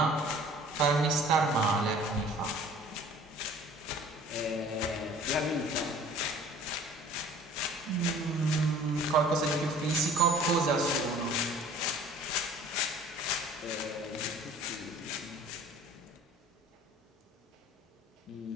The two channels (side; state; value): both; normal; correlation 0.49